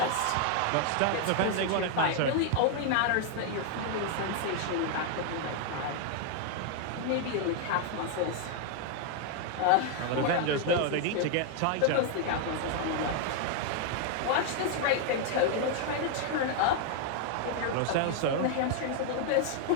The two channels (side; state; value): both; different; correlation 0.00